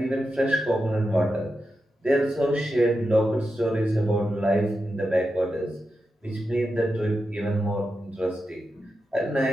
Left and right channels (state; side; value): normal; both; correlation 0.89